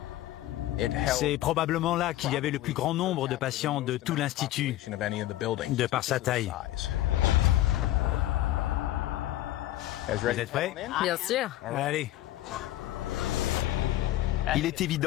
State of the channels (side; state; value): right; quieter; 14.8 dB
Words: C'est probablement là qu'il y avait le plus grand nombre de patients de tout l'Institut, de par sa taille. Vous êtes prêts? Bien sûr. Allez. Il est